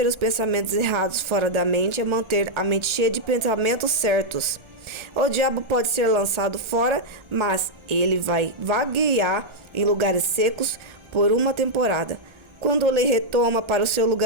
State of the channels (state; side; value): late; left; 1.4 ms